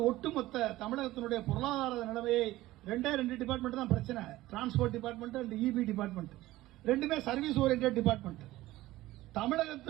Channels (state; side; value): quieter; left; 16.9 dB